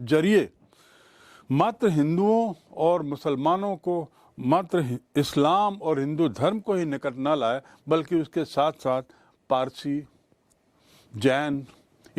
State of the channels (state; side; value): identical; both; correlation 1.00